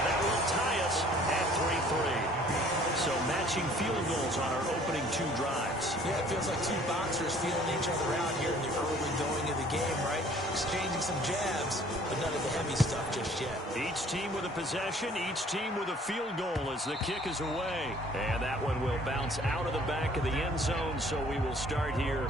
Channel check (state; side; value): normal; both; correlation 0.55